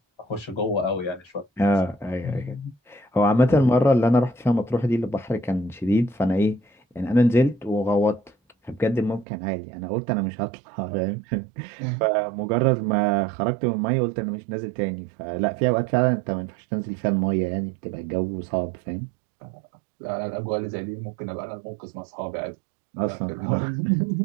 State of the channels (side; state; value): left; drops out; at 9.2 s